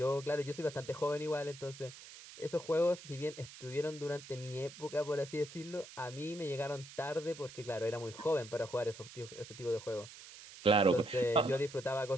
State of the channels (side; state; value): right; noise; hiss, 16 dB below the sound